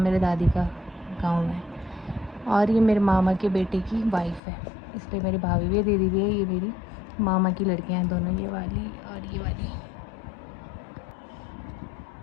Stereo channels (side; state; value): right; drops out; at 4.4 s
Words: मेरे दादी का गांव है। और ये मेरे मामा के बेटे की वाइफ है, इसलिए मेरी भाभी भी है, दीदी भी है। ये मेरी मामा की लड़कियाँ हैं दोनों, ये वाली और ये वाली।